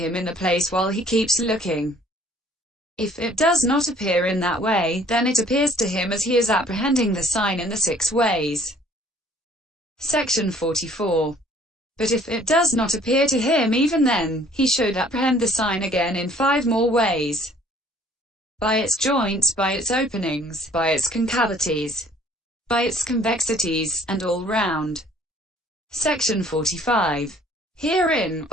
in the place while he keeps looking. If it does not appear in that way, then it appears to him as he is apprehending the sign in the 6 ways. Section 44. But if it does not appear to him even then, he should apprehend the sign again in 5 more ways: by its joints, by its openings, by its concavities, by its convexities, and all round. Section 45. Herein,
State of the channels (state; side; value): normal; both; correlation 0.56